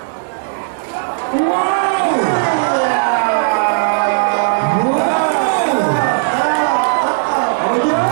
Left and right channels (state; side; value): silent; left; digital silence